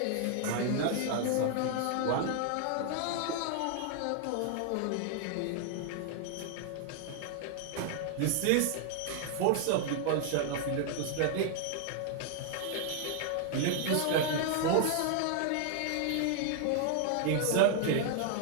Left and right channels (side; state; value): both; different; correlation 0.00